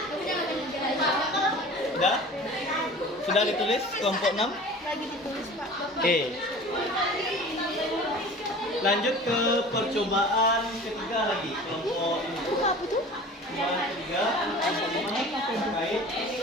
Sudah? Sudah ditulis kelompok 6? Lagi ditulis, Pak. Oke. Lanjut ke percobaan ketiga lagi, kelompok ini. Apa tuh? Percobaan ketiga, kelompok 5 terkait ini,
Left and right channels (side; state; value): both; normal; correlation 0.41